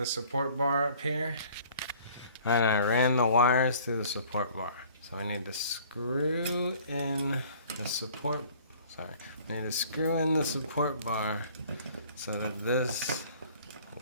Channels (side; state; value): both; inverted; correlation -0.53